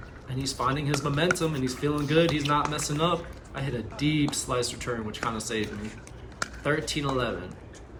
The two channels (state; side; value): identical; both; correlation 1.00